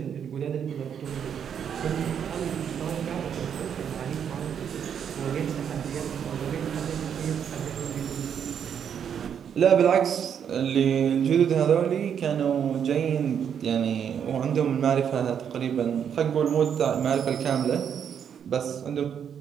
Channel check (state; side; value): quieter; left; 8.2 dB